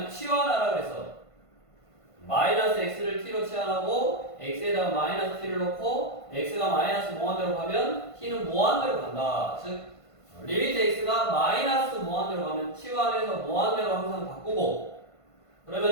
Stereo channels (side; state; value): right; late; 1.5 ms